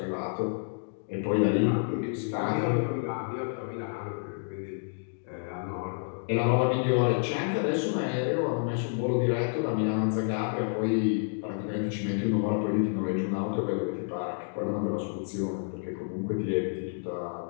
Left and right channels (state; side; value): silent; right; digital silence